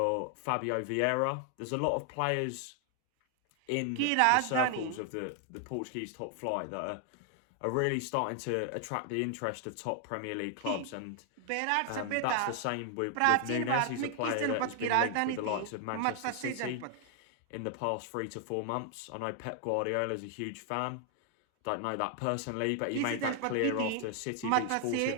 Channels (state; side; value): different; both; correlation 0.00